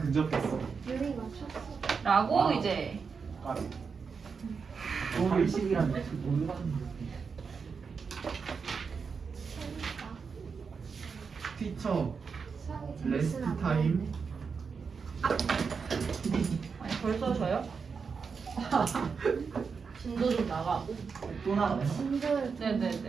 근접했어. 유리 맞췄어. 라고 와우. 이제 아, 오늘 20이란데 못 봤는데. 재밌다. 티처 수학이 레스트 재밌으면 안 타임. 아니 벌써 져요? 진도 좀 나가고 또 나가요? 돼. 진도를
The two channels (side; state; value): left; quieter; 5.5 dB